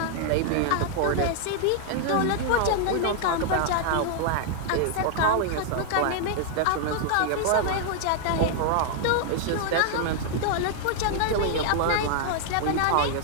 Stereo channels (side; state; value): both; different; correlation 0.00